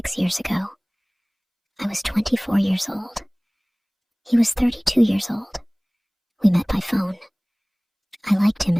years ago. I was 24 years old. He was 32 years old. We met by phone. I liked him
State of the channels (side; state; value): both; identical; correlation 1.00